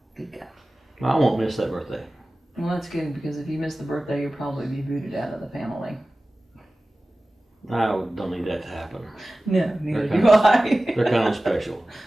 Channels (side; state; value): both; normal; correlation 0.97